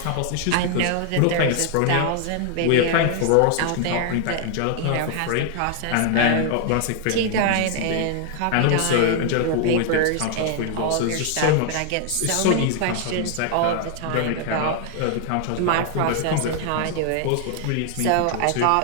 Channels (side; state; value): both; different; correlation 0.00